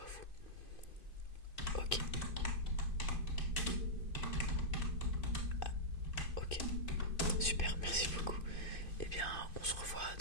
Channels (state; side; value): late; right; 2.5 ms